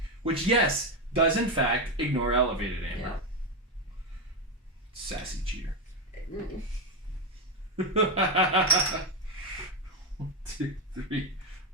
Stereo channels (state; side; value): normal; both; correlation 0.09